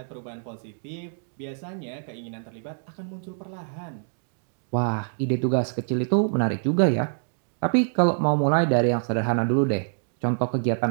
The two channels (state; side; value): silent; left; digital silence